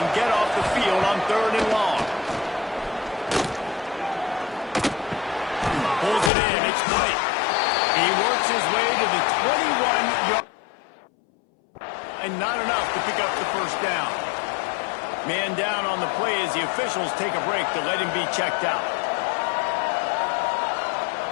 get off the field on 3rd and long. Pulls it in. It's White. He works his way to the 21-yard. And not enough to pick up the first down. Man down on the play as the officials take a break to let him be checked out.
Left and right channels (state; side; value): drops out; right; at 6.3 s